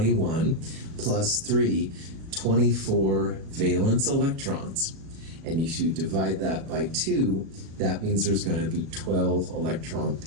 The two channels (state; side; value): late; left; 37 ms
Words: plus 3, 24 valence electrons. And if you divide that by 2, that means there's going to be 12 electron